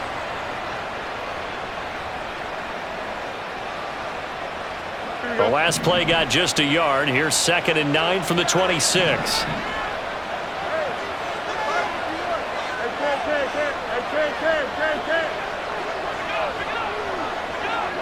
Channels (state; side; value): identical; both; correlation 1.00